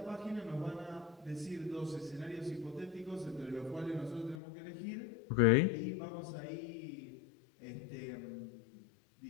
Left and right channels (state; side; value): drops out; right; at 4.4 s